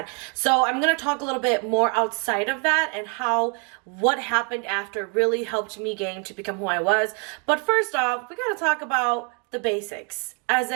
So I'm gonna talk a little bit more outside of that and how what happened after really helped me gain to become who I was. But first off, we gotta talk about the basics, as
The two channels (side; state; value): left; quieter; 36.8 dB